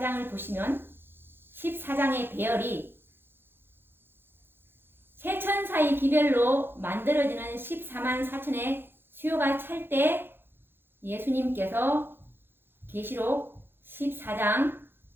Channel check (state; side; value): late; left; 0.10 ms